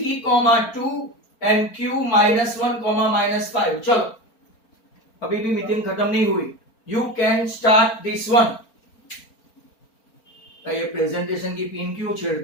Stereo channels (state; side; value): late; right; 4.4 ms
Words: 2 and q -1, -5। चलो, अभी भी मीटिंग खत्म नहीं हुई, you can start this one. ये प्रेजेंटेशन की पिन क्यों